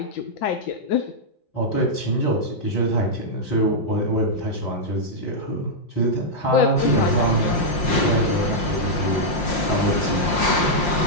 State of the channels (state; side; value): late; right; 5.7 ms